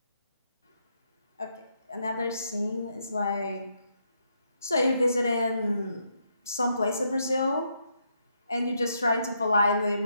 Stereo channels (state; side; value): inverted; both; correlation -0.78